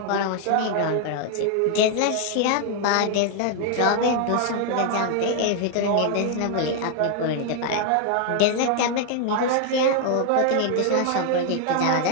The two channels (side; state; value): both; different; correlation 0.00